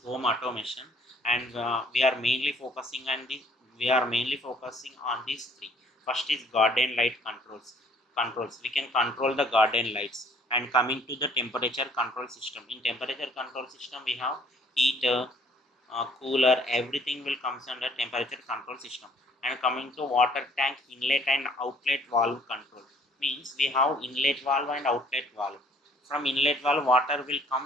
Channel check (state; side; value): normal; both; correlation 0.59